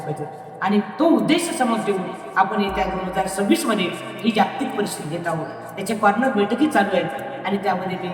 आणि तो उद्देश समोर ठेवून आपण येत्या 2026मध्ये ही जागतिक परिस्थिती घेत आहोत त्याचे कॉर्नर बैठकी चालू आहेत आणि त्यामध्ये मी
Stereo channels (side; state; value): both; identical; correlation 1.00